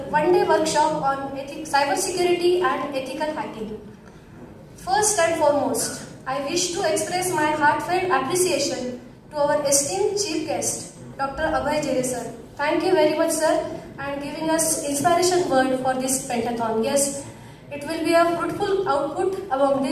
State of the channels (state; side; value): identical; both; correlation 1.00